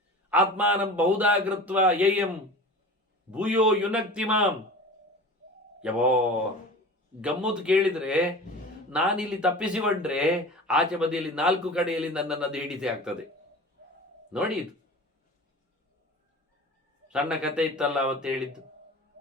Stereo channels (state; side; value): normal; both; correlation 0.37